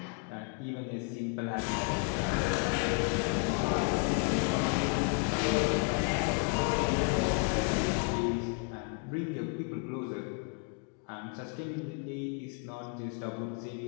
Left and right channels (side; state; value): right; quieter; 37.2 dB